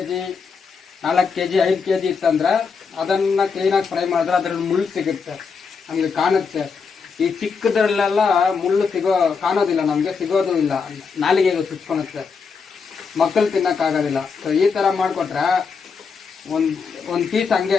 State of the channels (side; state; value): right; quieter; 5.4 dB